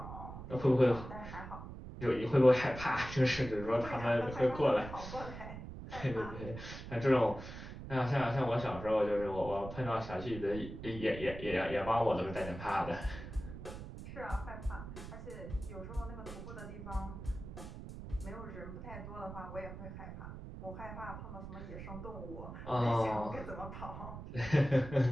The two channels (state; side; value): noise; right; rumble, 10 dB below the sound